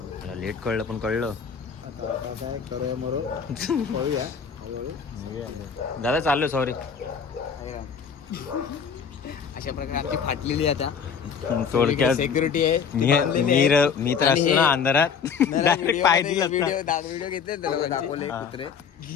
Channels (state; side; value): quieter; right; 6.6 dB